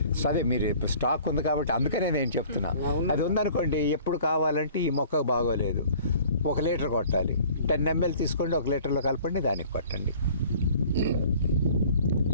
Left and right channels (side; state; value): both; inverted; correlation -0.50